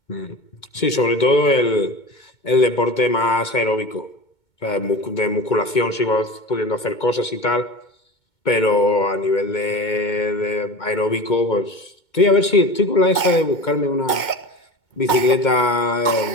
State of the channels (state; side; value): late; right; 2.2 ms